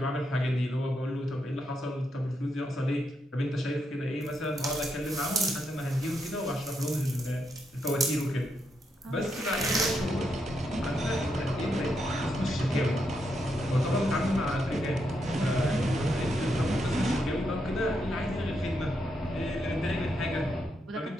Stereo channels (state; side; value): normal; both; correlation 0.81